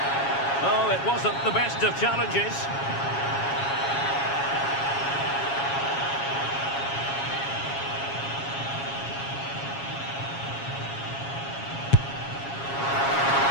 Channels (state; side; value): late; right; 7.3 ms